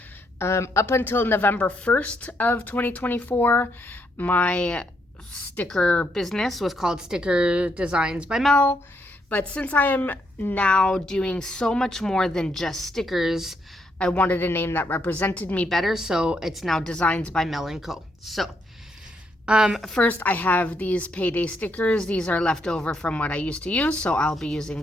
up until November 1st of 2024, my sticker business was called Sticker Designs by Mel. But since I am now doing so much more than just stickers, I wanted a name that represented me better, so it's now Designs by Mel & Co. So, first I have these payday stickers. These are left over from what I used to use, so I'll be using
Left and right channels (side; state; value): both; normal; correlation 0.76